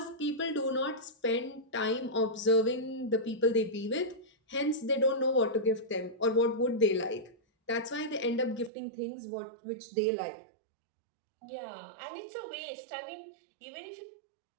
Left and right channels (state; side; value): drops out; left; at 8.7 s